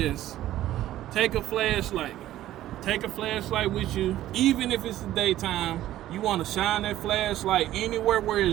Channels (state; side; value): quieter; left; 13.8 dB